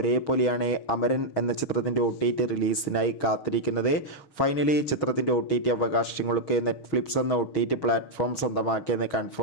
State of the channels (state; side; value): late; right; 6.3 ms